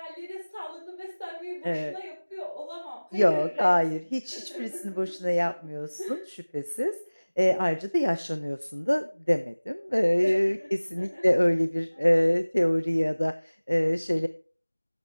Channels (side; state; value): both; inverted; correlation -1.00